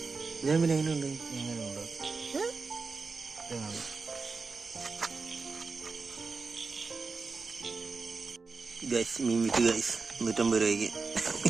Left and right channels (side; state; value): left; quieter; 4.4 dB